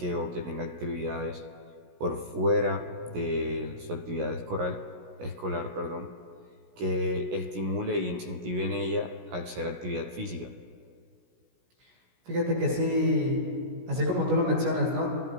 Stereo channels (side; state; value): left; late; 16 ms